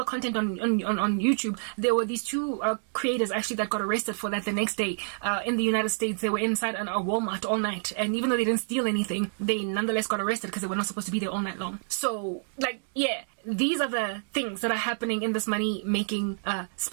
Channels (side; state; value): left; silent; digital silence